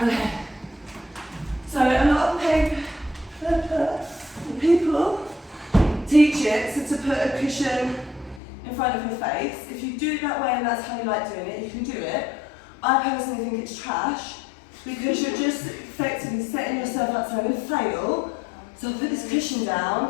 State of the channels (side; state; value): right; drops out; at 8.4 s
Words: So a lot of people teach it so to put a cushion in front of your face. If you do it that way and that's how you like doing it, you can do it. I personally think it's trash because you're just effectively setting yourself up, so I'm going to fail. So I'll put this cushion